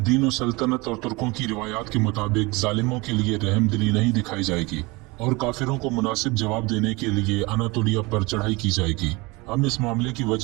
दीन और सल्तनत और तुर्कों की रिवायात के मुताबिक जालिमों के लिए रहमदिली नहीं दिखाई जाएगी और काफिरों को मुनासिब जवाब देने के लिए अनातोलिया पर चढ़ाई की जाएगी। हम इस मामले की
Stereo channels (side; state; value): left; quieter; 24.6 dB